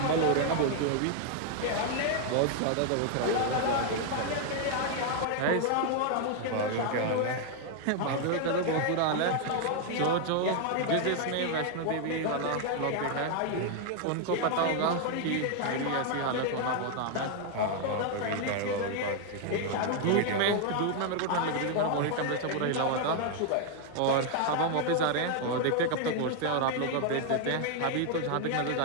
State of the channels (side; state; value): both; different; correlation 0.00